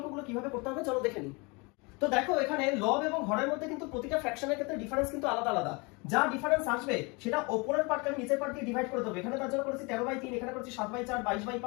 কিভাবে করতে হবে চলো দেখে নিই। তো দেখো এখানে লব এবং হরের মধ্যে কিন্তু প্রতিটা ফ্র্যাকশনের ক্ষেত্রে ডিফারেন্স কিন্তু আলাদা আলাদা। যা ডিফারেন্স আসবে সেটা উপরের পার্টকে নিচের পার্ট দিয়ে ডিভাইড করে দেবো। এখানে তার জন্য করেছি 13/3, এখানে করেছি 7/4,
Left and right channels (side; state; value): right; quieter; 28.8 dB